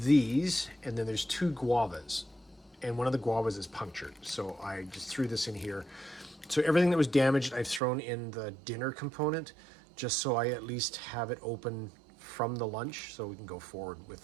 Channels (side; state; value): left; drops out; at 7.8 s